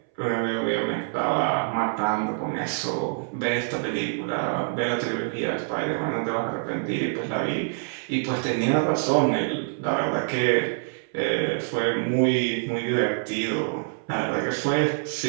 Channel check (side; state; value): left; silent; 60 dB below the other